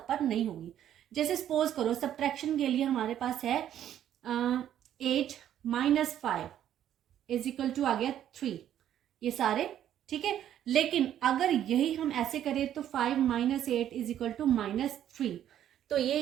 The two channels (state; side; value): quieter; left; 10.9 dB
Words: पर नहीं होगी। जैसे सपोज करो सब्ट्रैक्शन के लिए हमारे पास है 8 माइनस 5 इज इक्वल टू आ गया 3, ये सारे ठीक है। लेकिन अगर यही हम ऐसे करें तो 5 minus 8 is equal to minus 3, तो ये